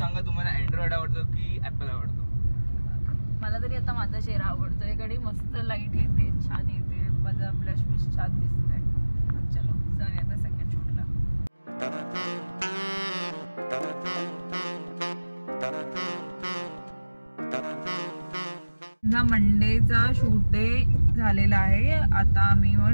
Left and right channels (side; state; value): both; inverted; correlation -1.00